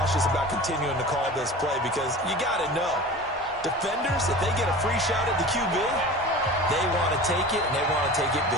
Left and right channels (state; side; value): normal; both; correlation 0.36